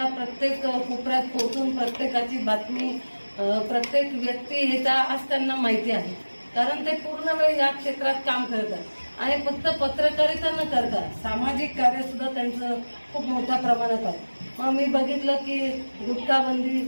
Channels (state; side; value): inverted; both; correlation -1.00